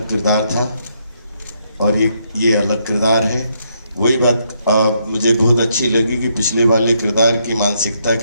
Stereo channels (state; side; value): inverted; both; correlation -0.75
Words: किरदार था और एक ये अलग किरदार है। वही बात मुझे बहुत अच्छी लगी कि पिछले वाले किरदार की मानसिकता